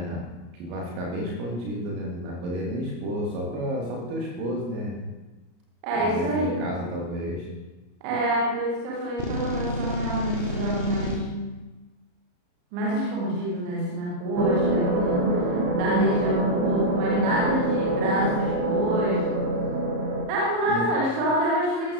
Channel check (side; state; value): left; late; 34 ms